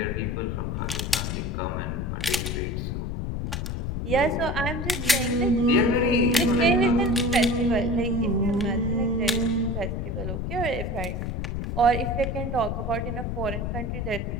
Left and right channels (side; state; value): left; noise; rumble, 2 dB below the sound